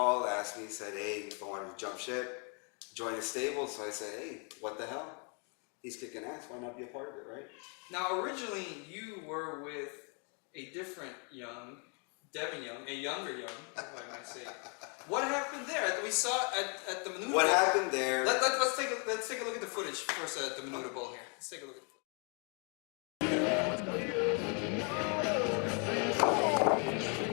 asked me, said, hey, if I wanted to jump ship, join the stable. So I said, hey, what the hell? He's kicking ass, why not be a part of it, right? Now, originally, you were with a different Devin Young, a younger Young, if I might say. What happened there? We saw at the Menudo Bowl. What happened there? Let's take a look at the footage first at the Menudo Bowl here. Let's take a look at the footage.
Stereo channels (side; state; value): right; quieter; 37.3 dB